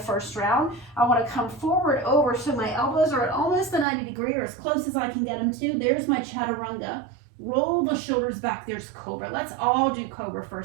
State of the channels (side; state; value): left; drops out; at 3.9 s